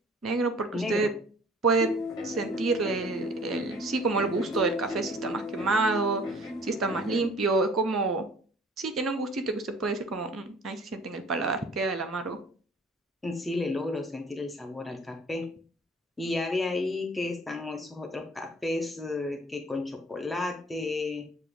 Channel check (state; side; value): normal; both; correlation 0.51